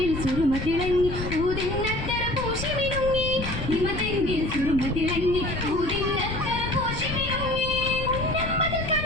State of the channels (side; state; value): left; noise; rumble, 6 dB below the sound